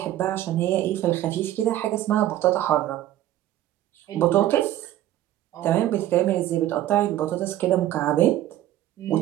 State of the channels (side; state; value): left; quieter; 13.4 dB